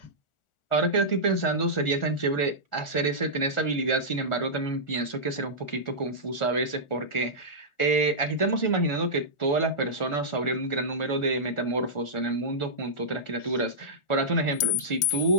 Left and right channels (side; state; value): right; late; 1.4 ms